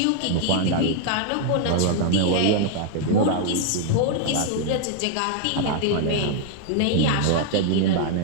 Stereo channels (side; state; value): both; different; correlation 0.00